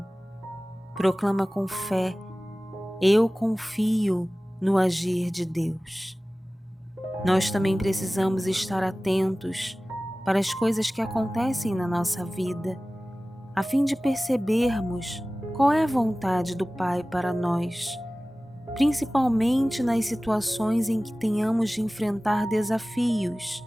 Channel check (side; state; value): both; normal; correlation 0.97